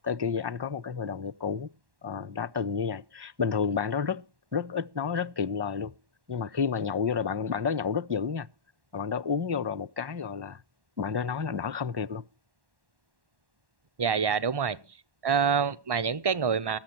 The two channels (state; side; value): late; left; 1.1 ms